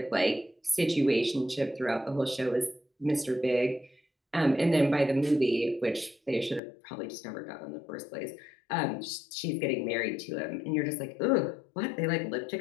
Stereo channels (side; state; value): right; drops out; at 6.6 s